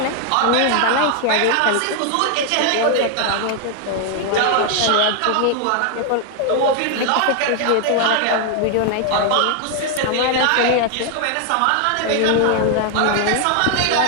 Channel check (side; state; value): both; different; correlation 0.00